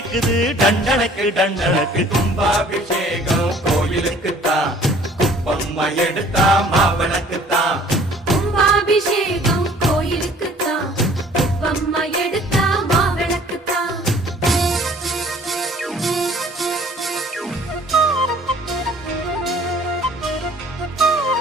டண்டனக்கு டண்டனக்கு. கும்பாபிஷேகம் கோயிலுக்குத்தான், குப்பம்மை எடுத்தா மாவிளக்குத்தான். கும்பாபிஷேகம் கோயிலுக்குத்தான், குப்பம்மை எடுத்தா மாவிளக்குத்தான்.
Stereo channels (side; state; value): both; normal; correlation 0.53